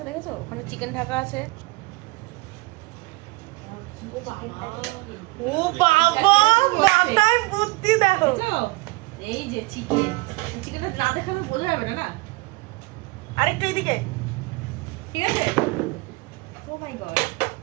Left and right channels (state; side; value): quieter; left; 23.8 dB